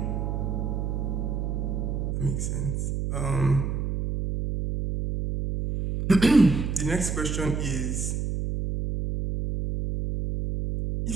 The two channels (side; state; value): right; noise; hum, 1 dB below the sound